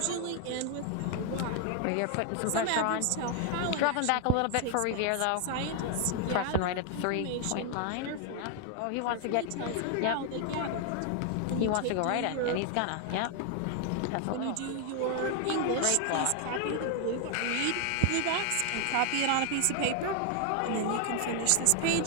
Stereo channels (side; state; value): both; different; correlation 0.00